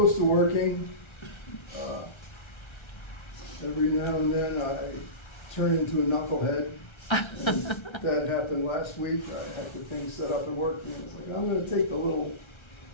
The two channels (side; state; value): right; late; 1.3 ms